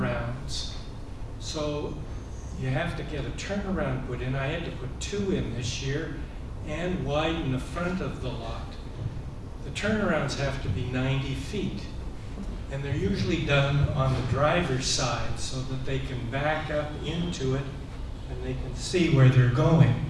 So you have to get a turnaround put in. I had to put 2 in this year and widen the front of the lot. The turnarounds have to be 90 feet. And they're usually done on the driver's side so that they can back up into it and they can see where they're going.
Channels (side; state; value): both; identical; correlation 1.00